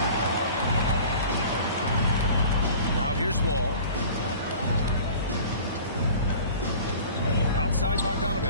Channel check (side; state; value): both; inverted; correlation -0.44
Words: Now here's Wall. Outside